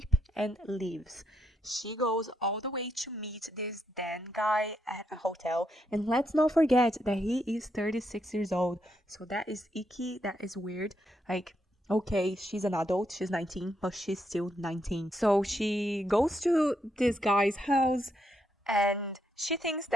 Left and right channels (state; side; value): normal; both; correlation 0.79